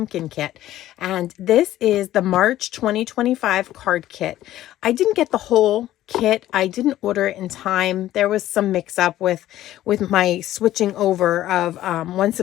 kit. And this is the March 2025 card kit. I didn't get the whole kit. I didn't order it in time. There was some mix up with my switching over of one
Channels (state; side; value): quieter; right; 13.8 dB